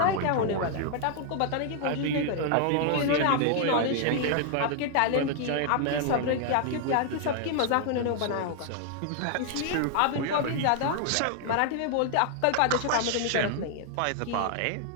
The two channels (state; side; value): different; both; correlation 0.00